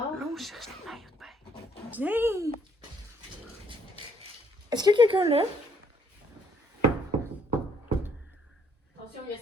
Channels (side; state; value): both; normal; correlation 0.66